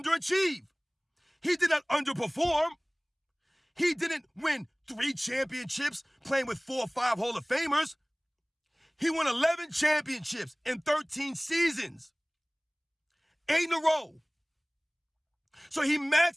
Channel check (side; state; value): both; identical; correlation 1.00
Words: He did not underperform. He didn't win 3 championships playing with 4 or 5 Hall of Famers. He won 11 championships in 13 seasons. 8 in a row. So he